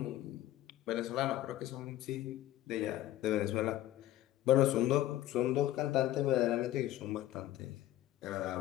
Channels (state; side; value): quieter; right; 14.2 dB